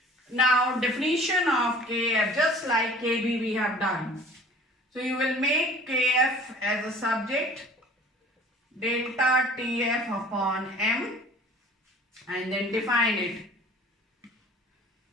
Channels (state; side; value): normal; both; correlation 0.48